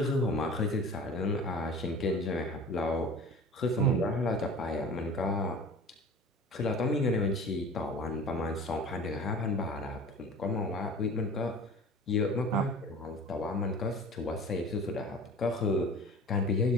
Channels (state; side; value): normal; both; correlation 0.40